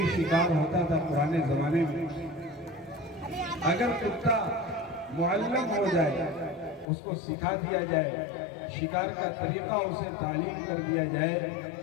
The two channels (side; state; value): right; drops out; at 6.9 s